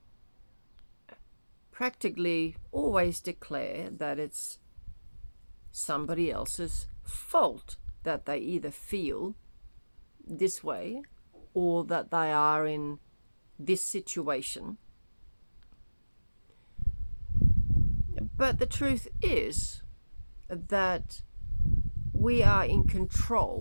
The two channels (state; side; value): inverted; both; correlation -1.00